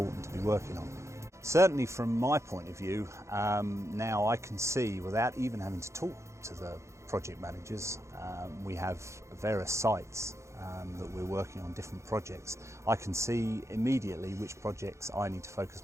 to be working on. Certainly from my point of view, now I can see, without even having to talk to the project managers, we have various sites that we're working on different projects. I can see immediately which projects I need to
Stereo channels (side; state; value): left; late; 0.14 ms